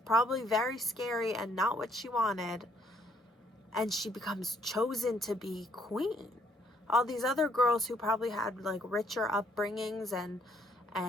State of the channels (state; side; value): normal; both; correlation 0.67